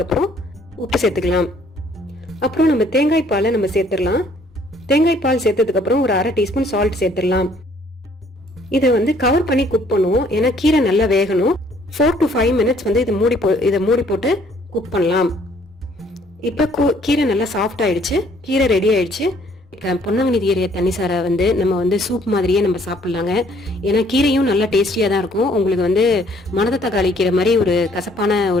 அப்புறம் உப்பு சேர்த்துக்கலாம். அப்புறம் நம்ம தேங்காய் பாலை நம்ம சேர்த்துடலாம். தேங்காய் பால் சேர்த்ததுக்கு அப்புறம் ஒரு 1/2 டீஸ்பூன் சால்ட் சேர்த்துடலாம். இதை வந்து கவர் பண்ணி குக் பண்ணுவோம். ஏன்னா கீரை நல்லா வேகணும். 4 to 5 மினிட்ஸ் வந்து இதை மூடி போட்டு குக் பண்ணலாம். இப்போ கீரை நல்லா சாஃப்ட் ஆயிடுச்சு. கீரை ரெடி ஆயிடுச்சு. பொன்னாங்கண்ணி கீரை தண்ணிசாரை வந்து நம்ம வந்து சூப் மாதிரியே நம்ம சாப்பிட்லாங்க. ஏன்னா கீரையும் நல்லா டேஸ்டியாக தான் இருக்கும். உங்களுக்கு வந்து மணத்த தக்காளி கீரை மாதிரி ஒரு கசப்பான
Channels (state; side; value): normal; both; correlation 0.62